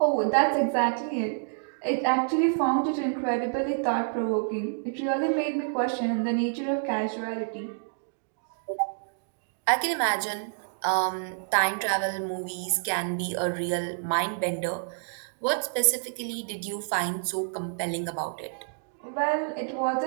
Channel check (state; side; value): silent; left; digital silence